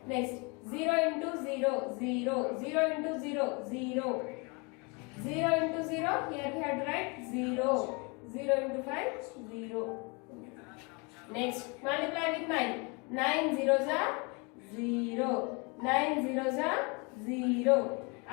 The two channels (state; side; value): quieter; right; 30.7 dB